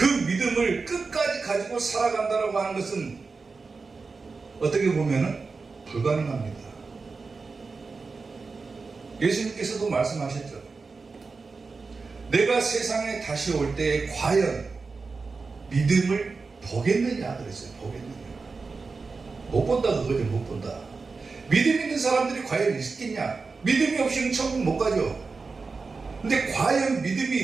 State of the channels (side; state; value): left; quieter; 4.4 dB